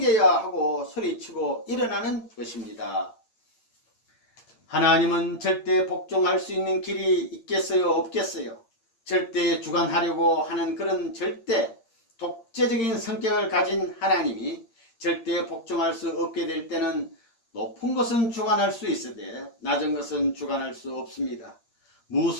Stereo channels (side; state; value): right; late; 8.7 ms